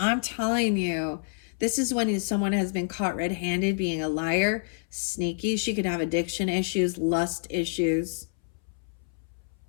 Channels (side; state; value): right; silent; 59 dB below the other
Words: telling you. This is when someone has been caught red-handed being a liar. Sneaky. She could have addiction issues. Lust issues.